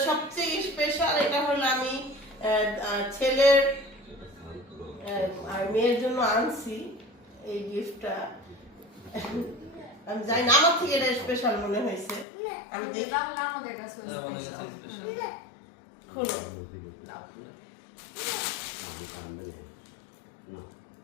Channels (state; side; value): drops out; right; at 12.2 s